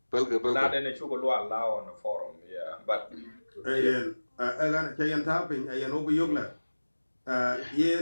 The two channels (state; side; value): inverted; both; correlation -1.00